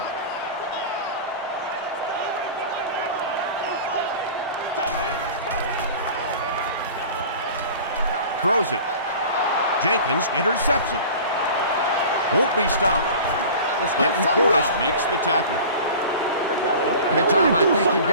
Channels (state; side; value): inverted; both; correlation -0.39